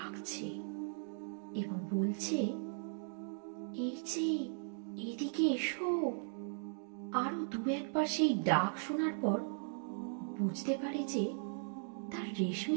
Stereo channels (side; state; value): left; silent; digital silence